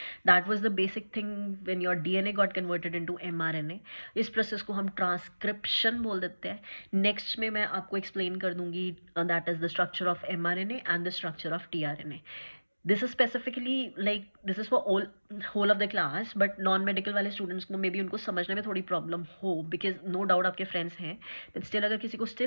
That was the basic thing when your DNA got converted into mRNA. इस प्रोसेस को हम ट्रांसक्रिप्शन बोल देते हैं। नेक्स्ट में मैं आपको एक्सप्लेन कर दूंगी that is the structure of mRNA and the structure of tRNA. This is specifically like this is for whole of the class, but non medical वाले स्टूडेंट्स को मे बी उनको समझने में थोड़ी प्रॉब्लम हो, बिकॉज नो डाउट आपके friends हैं, but still अगर किसी को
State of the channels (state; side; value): inverted; both; correlation -1.00